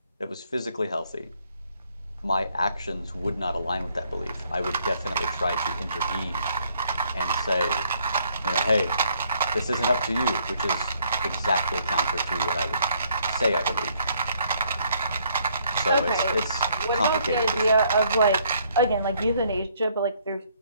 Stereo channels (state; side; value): inverted; both; correlation -0.67